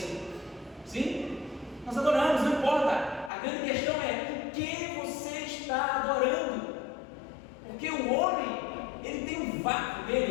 Sim? Nós adoramos, não importa. A grande questão é o que você está adorando. Porque o homem, ele tem um vácuo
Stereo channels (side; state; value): right; drops out; at 3.3 s